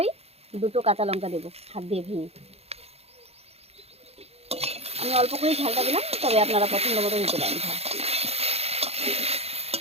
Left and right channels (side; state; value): left; late; 0.30 ms